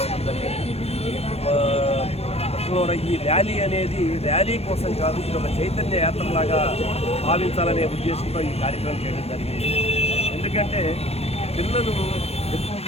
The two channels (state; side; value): late; right; 0.29 ms